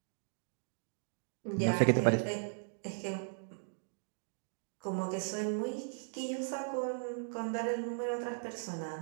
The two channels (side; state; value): left; silent; digital silence